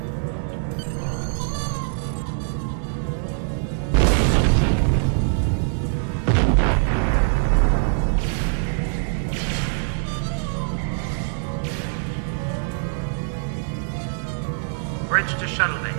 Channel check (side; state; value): left; silent; 63 dB below the other